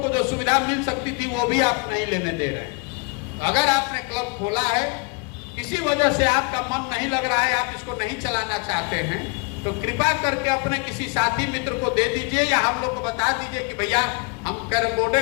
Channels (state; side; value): quieter; right; 32.8 dB